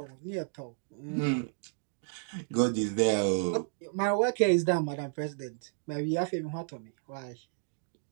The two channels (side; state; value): left; silent; digital silence